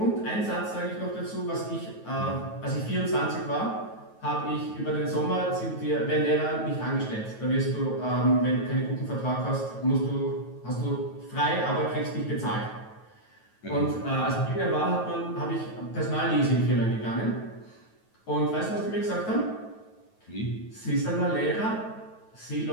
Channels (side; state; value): right; late; 9.2 ms